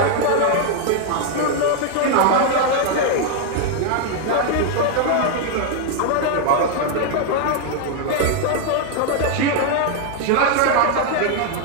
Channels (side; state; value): both; different; correlation 0.01